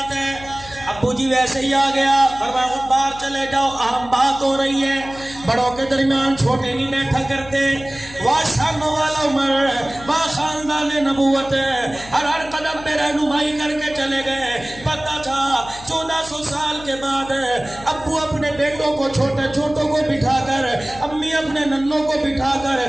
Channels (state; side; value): noise; left; hum, 17 dB below the sound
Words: ہے؟ ابو جی ویسے ہی آ گیا، فرمایا باہر چلے جاؤ، اہم بات ہو رہی ہے، بڑوں کے درمیان چھوٹے نہیں بیٹھا کرتے۔ واشانوں والا عمر، با خاندان نبوت، ہر قدم پہ رہنمائی کر کے چلے گئے۔ پتہ تھا 1400 سال کے بعد ابو اپنے بیٹوں کو چھوٹے چھوٹوں کو بٹھا کر، امی اپنے ننوں کو بٹھا کر